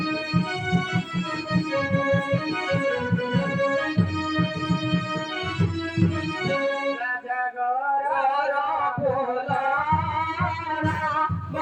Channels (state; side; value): identical; both; correlation 1.00